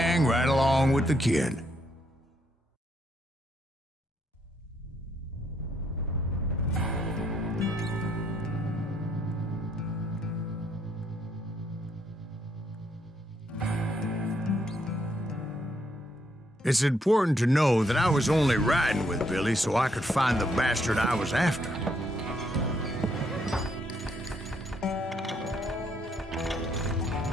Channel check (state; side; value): normal; both; correlation 0.73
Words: right along with the kid. It's important to know that I was only riding with Billy so I could find the bastard I was after.